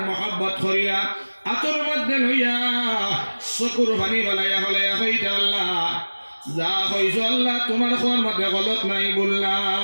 মহব্বত করিয়া আতর মধ্যে লইয়া চকুর পানি বলাইয়া হলাইয়া হইতে আল্লাহ যা কইছো আল্লাহ তোমার কোন মধ্যে গলত নাই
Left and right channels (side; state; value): both; inverted; correlation -1.00